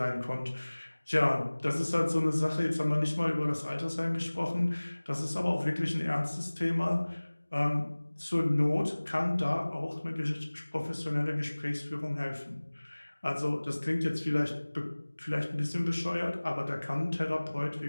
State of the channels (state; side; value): inverted; both; correlation -1.00